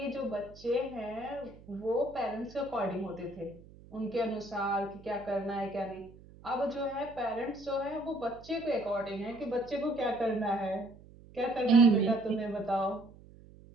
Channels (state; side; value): noise; right; hum, 21 dB below the sound